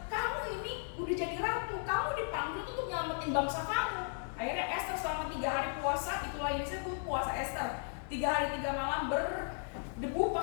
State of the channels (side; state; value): right; silent; 54 dB below the other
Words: Kamu ini udah jadi ratu, kamu dipanggil untuk nyelamatin bangsa kamu. Akhirnya Esther selama 3 hari puasa, itulah yang disebut puasa Esther. 3 hari 3 malam berdebu,